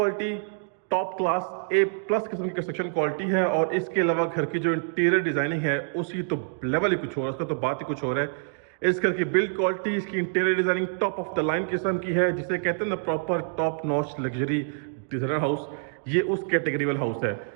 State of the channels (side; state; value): left; silent; digital silence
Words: top class A+ किस्म की कंस्ट्रक्शन क्वालिटी है। और इसके अलावा घर की जो इंटीरियर डिजाइनिंग है उसकी तो लेवल ही कुछ और है, उसका तो बात ही कुछ और है। इस घर की बिल्ड क्वालिटी, इसकी interior designing top of the line किस्म की है, जिसे कहते हैं ना proper top notch luxury designer house. ये उस कैटेगरी वाला हाउस है